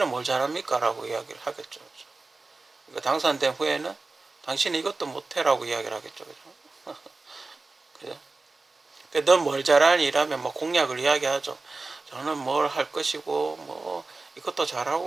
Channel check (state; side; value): quieter; left; 3.6 dB